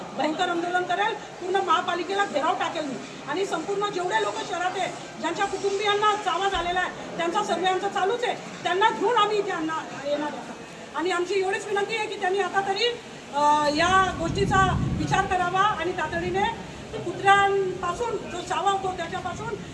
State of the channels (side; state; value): both; identical; correlation 1.00